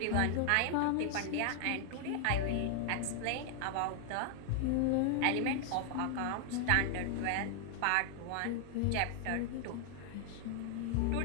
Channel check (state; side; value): different; both; correlation 0.00